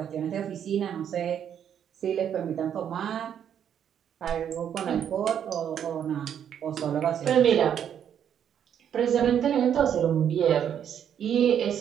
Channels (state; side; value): quieter; left; 9.0 dB